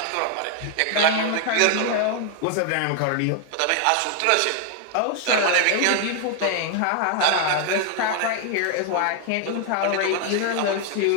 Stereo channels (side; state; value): both; different; correlation 0.00